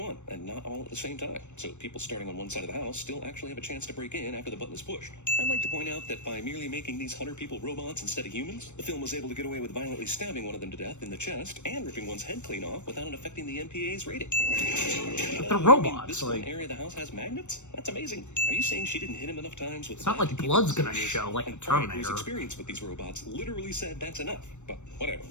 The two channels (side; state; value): right; late; 0.84 ms